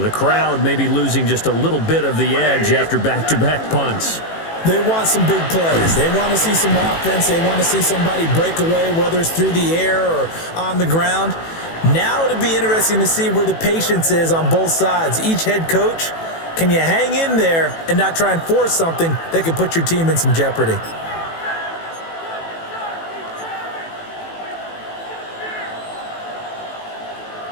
The crowd may be losing just a little bit of the edge after back-to-back punts. They want some big plays. They want to see some offense. They want to see somebody break away, whether it's through the air or on the ground. Now it'll be interesting to see where the patience is on both sides. Each head coach, can you hang in there and not try and force something that could put your team in some jeopardy?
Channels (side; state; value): right; late; 18 ms